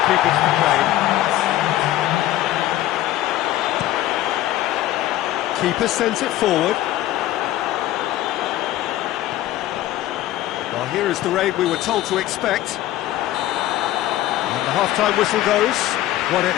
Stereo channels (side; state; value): right; quieter; 14.4 dB